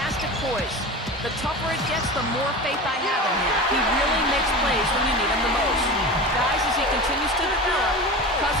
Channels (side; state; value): both; normal; correlation 0.30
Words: poise. The tougher it gets, the more faith I have in him. He really makes plays when you need him the most. Guys, as he continues to develop,